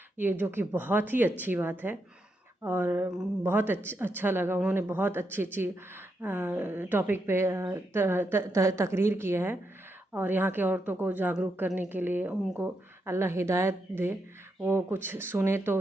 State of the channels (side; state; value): both; normal; correlation 0.82